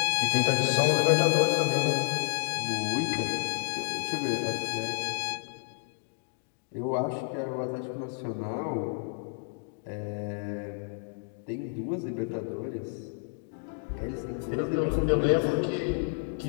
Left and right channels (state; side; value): silent; right; digital silence